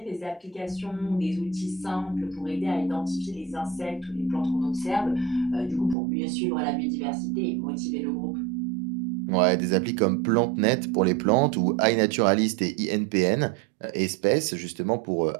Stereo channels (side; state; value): left; drops out; at 6.0 s